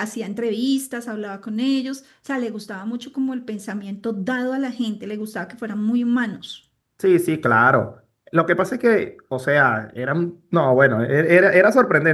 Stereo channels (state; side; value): identical; both; correlation 1.00